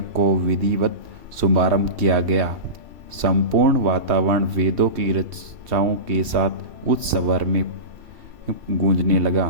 को विधिवत शुभारंभ किया गया। संपूर्ण वातावरण वेदों की रचनाओं के साथ उच्च स्वर में गूंजने लगा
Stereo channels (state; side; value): late; left; 2.7 ms